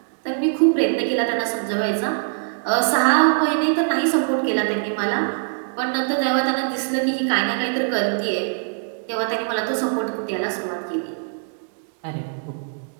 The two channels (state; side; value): silent; left; digital silence